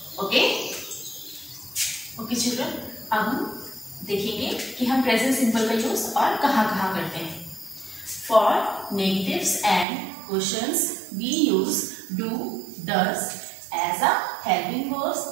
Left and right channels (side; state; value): left; drops out; at 9.9 s